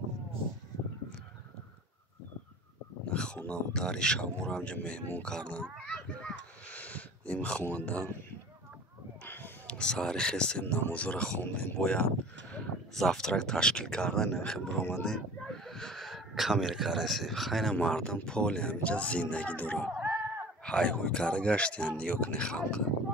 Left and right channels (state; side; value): normal; both; correlation 0.41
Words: хонаву дари шабморо ҳамҷо меҳмон кардан. ин хонада саҳари хестем, намозҳоро хондем, бояд завтрак ташкил кардан, нахел биромадем камере карасем. хайна мардам поли ҳаминҷа зиндагӣ дорад. ҳайҳуй карда гаштиянд, нигоҳ кунед халқа.